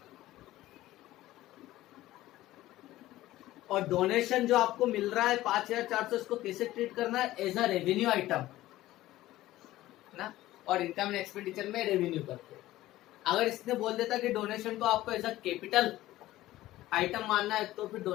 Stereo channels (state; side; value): quieter; right; 15.8 dB